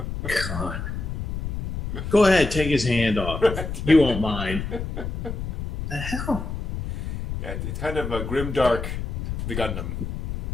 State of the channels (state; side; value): noise; left; rumble, 5 dB below the sound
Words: God. Go ahead, take his hand off. You won't mind. The hell? Yeah, it's kind of a grimdark, the Gundam.